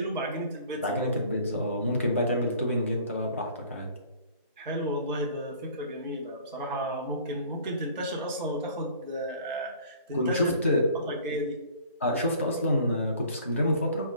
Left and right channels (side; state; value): both; inverted; correlation -0.50